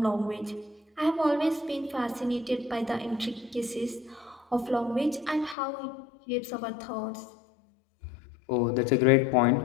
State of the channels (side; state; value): right; drops out; at 5.6 s